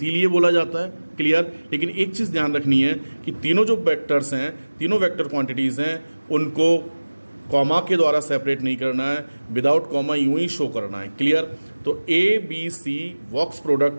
बोला जाता है, क्लियर। लेकिन एक चीज ध्यान रखनी है कि तीनों जो वेक्टर्स हैं, तीनों वेक्टर क्वांटिटीज हैं, उनको कॉमा के द्वारा सेपरेट नहीं करना है, विदाउट कॉमा यूं ही शो करना है, क्लियर। तो A B C box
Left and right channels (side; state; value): both; inverted; correlation -1.00